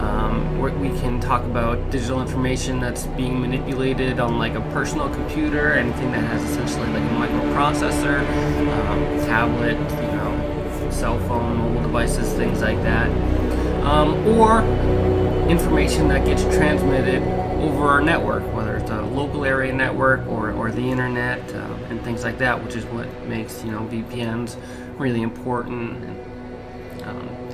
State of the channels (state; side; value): identical; both; correlation 1.00